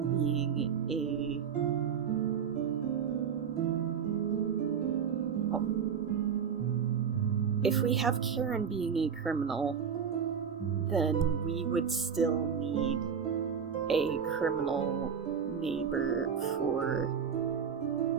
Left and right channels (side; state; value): left; quieter; 7.1 dB